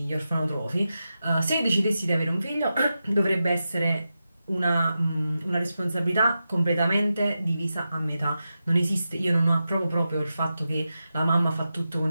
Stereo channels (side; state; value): both; inverted; correlation -0.90